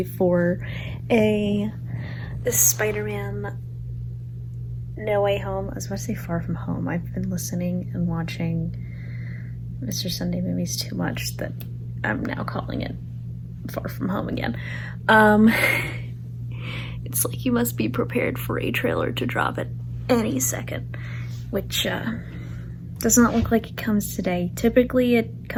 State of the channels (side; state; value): both; identical; correlation 1.00